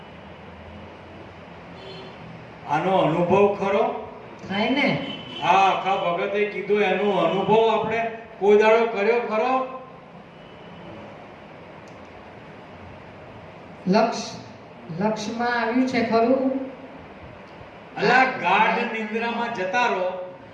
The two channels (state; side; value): identical; both; correlation 1.00